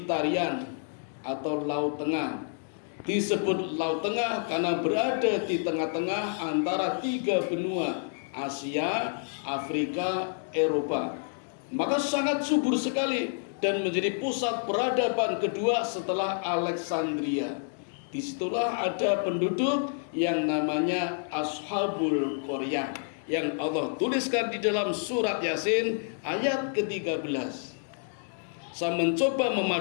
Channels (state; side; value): silent; right; digital silence